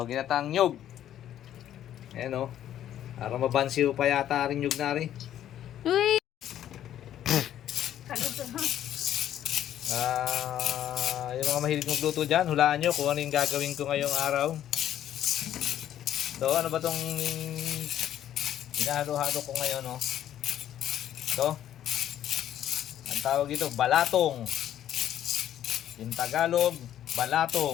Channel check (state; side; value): quieter; right; 11.3 dB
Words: ginata ang nyog. Ayun o. Para mabansiw pa yata rin nyog na rin. Uy! Yung mga mahilig magluto dyan, hulaan nyo kung ano yung gagawin ko ngayong araw. So, ano ba tong hinahalo-halo ko ngayon, no? So, ang tawag ito, balatong. In Tagalog,